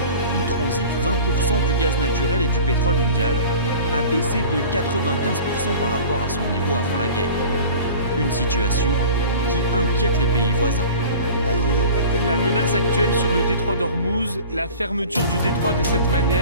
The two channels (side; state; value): both; inverted; correlation -0.41